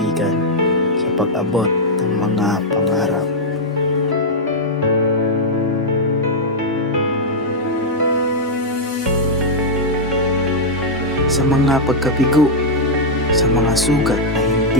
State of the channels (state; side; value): normal; both; correlation -0.04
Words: sa pag-abot ng mga pangarap. Sa mga pagkabigo, sa mga sugat na